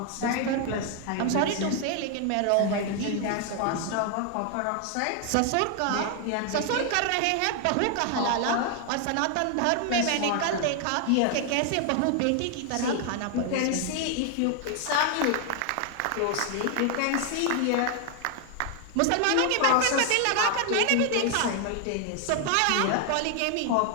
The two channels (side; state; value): both; different; correlation 0.00